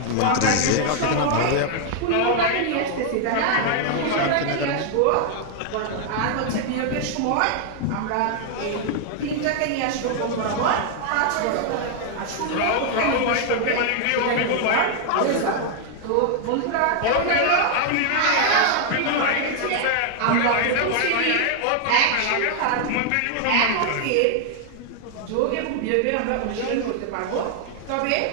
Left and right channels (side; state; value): both; different; correlation 0.00